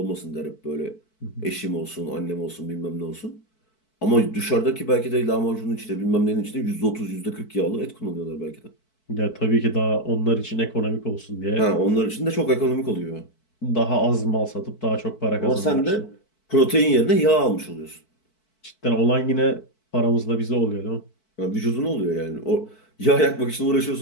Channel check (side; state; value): right; late; 4.6 ms